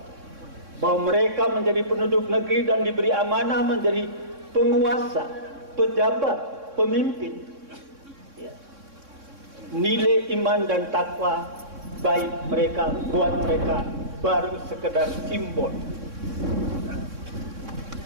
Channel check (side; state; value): left; late; 3.6 ms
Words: bahwa mereka menjadi penduduk negeri dan diberi amanah menjadi penguasa, pejabat, pemimpin, ya. Nilai iman dan takwa baik mereka, buat mereka baru sekedar simbol.